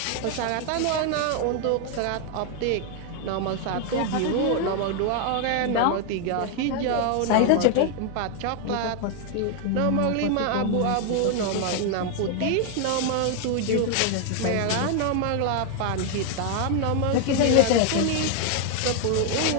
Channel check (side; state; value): both; different; correlation 0.00